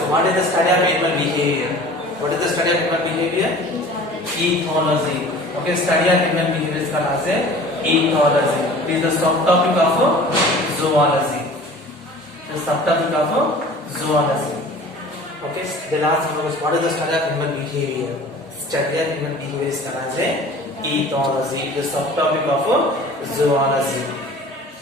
what is the study of animal behavior? What is the study of animal behavior? Ethology. Okay, study of animal behavior is called as ethology. It is the subtopic of zoology. The subtopic of zoology. Okay, the last one was what is the study of animal behavior? Study of animal behavior is called as ethology. The subtopic of zoology.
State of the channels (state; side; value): normal; both; correlation 0.44